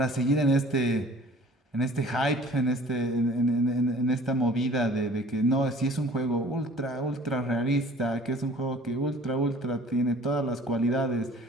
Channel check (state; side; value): normal; both; correlation 0.49